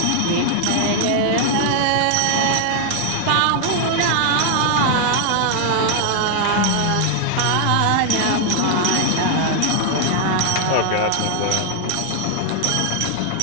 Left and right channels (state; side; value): different; both; correlation 0.00